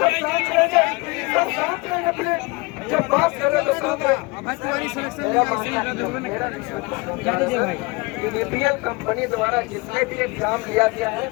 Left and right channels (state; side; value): quieter; right; 25.8 dB